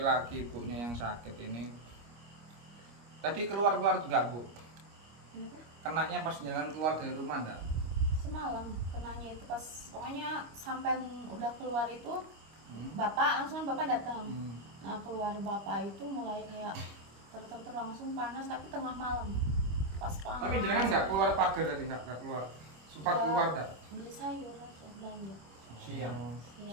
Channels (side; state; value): left; late; 25 ms